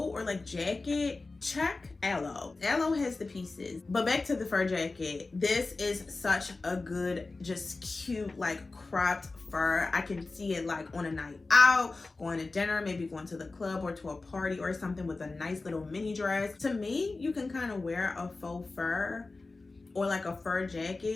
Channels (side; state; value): right; quieter; 3.5 dB